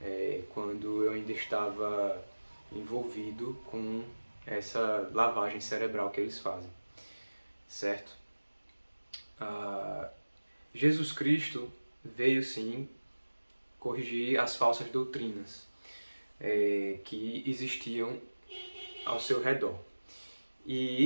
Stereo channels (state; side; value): inverted; both; correlation -1.00